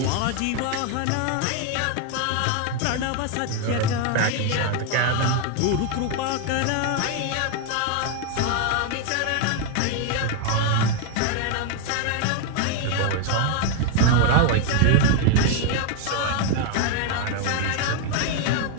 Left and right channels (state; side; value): different; both; correlation 0.01